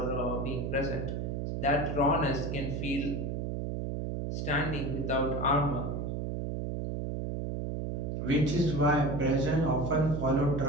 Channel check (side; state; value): right; noise; hum, 3 dB below the sound